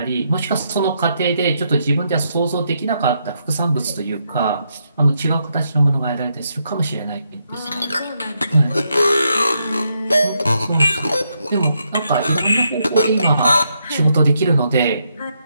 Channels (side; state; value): both; inverted; correlation -0.79